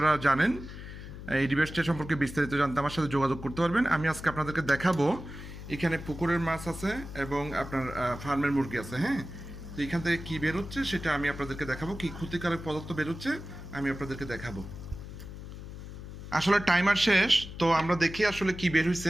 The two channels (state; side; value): noise; left; hum, 11 dB below the sound